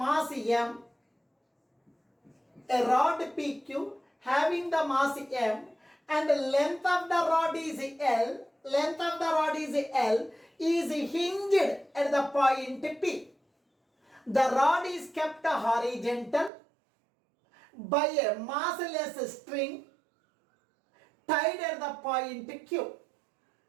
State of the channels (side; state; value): left; drops out; at 16.5 s